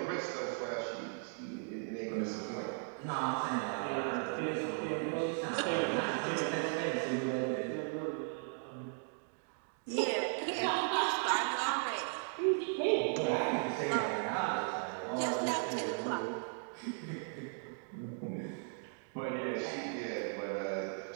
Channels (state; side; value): silent; left; 53 dB below the other